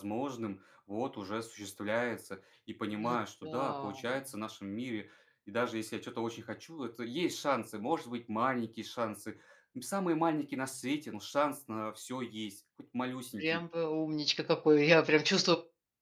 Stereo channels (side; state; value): both; identical; correlation 1.00